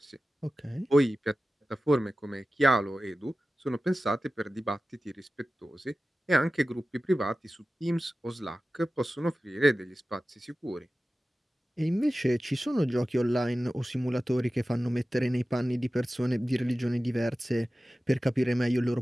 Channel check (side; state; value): both; normal; correlation 0.95